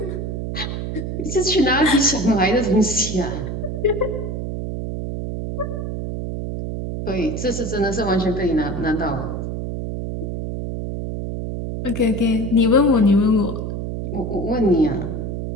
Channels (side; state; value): right; noise; hum, 4 dB below the sound